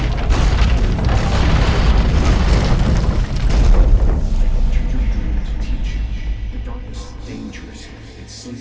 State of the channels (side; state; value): both; identical; correlation 1.00